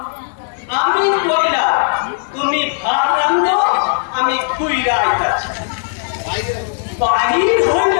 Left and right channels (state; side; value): silent; right; 59 dB below the other